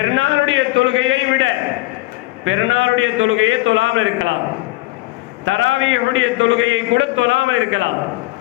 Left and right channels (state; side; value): quieter; right; 20.3 dB